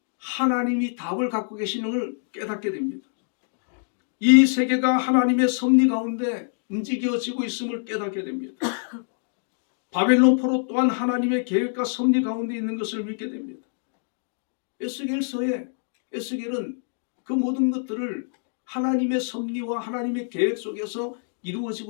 하나님이 답을 갖고 계시는 걸 깨닫게 됩니다. 이 세계가 하나님의 섭리 가운데 움직여지고 있음을 깨닫게 됩니다. 바벨론 포로 또한 하나님의 계획과 섭리 가운데 있는 것을 믿게 됩니다. 에스겔서에 에스겔은 그 모든 것들을 하나님의 섭리와 하나님의 계획 속에서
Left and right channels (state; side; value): silent; right; digital silence